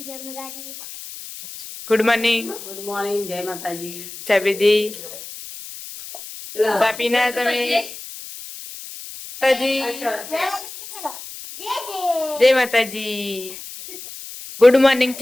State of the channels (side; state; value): left; noise; hiss, 13 dB below the sound